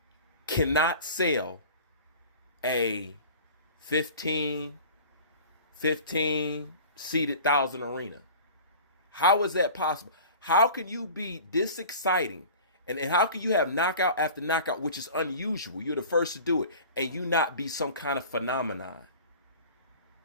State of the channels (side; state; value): both; inverted; correlation -0.41